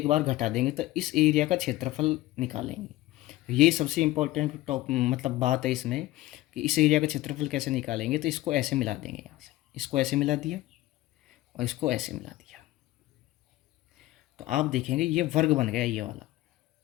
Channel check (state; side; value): quieter; right; 17.1 dB